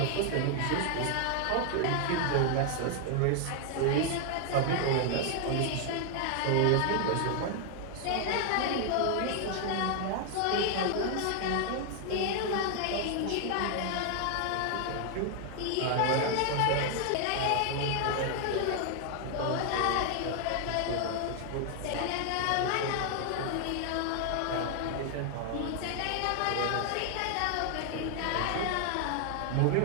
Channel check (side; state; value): both; different; correlation 0.00